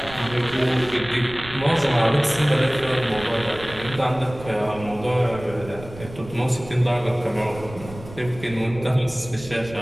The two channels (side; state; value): right; noise; rumble, 15 dB below the sound